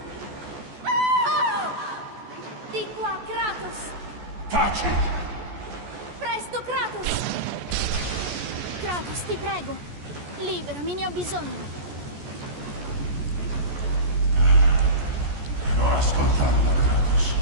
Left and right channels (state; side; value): late; left; 14 ms